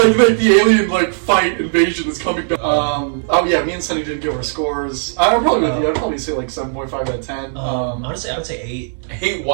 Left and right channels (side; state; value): left; silent; digital silence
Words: the alien like fight invasion is coming down. Oh yeah, me and Sunny didn't give our scores. I'm probably with you. I'd probably say like 7.5 out of 10. Honestly, I would say 8. Hey,